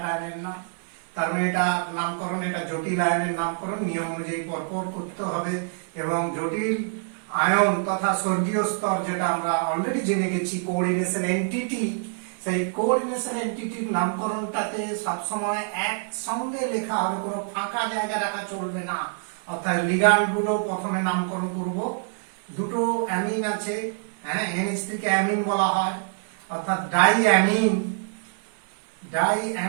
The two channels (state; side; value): silent; left; 56 dB below the other